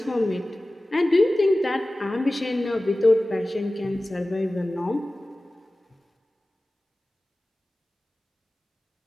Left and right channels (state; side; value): normal; both; correlation 0.97